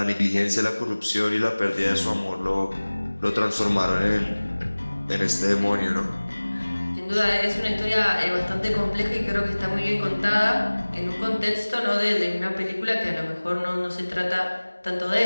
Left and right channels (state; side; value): inverted; both; correlation -1.00